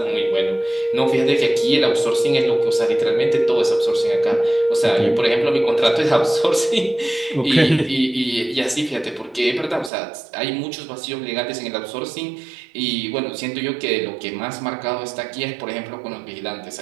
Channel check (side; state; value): left; drops out; at 9.9 s